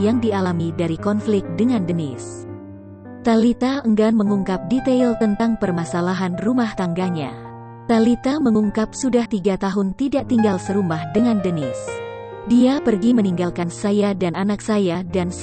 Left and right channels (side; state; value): both; identical; correlation 1.00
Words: dialami dari konflik dengan Dennis. Thalita enggan mengungkap detail tentang permasalahan rumah tangganya. Thalita mengungkap sudah 3 tahun tidak tinggal serumah dengan Dennis. Dia pergi meninggalkan saya dan anak saya dan